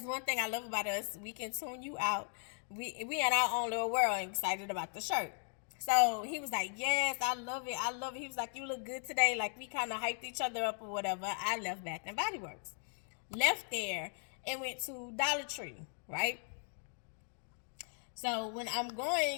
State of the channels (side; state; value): right; silent; 53 dB below the other